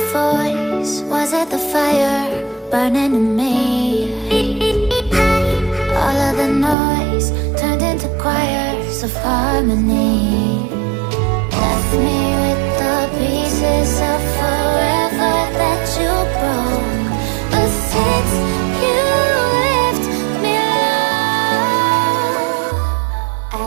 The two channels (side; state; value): left; drops out; at 6.8 s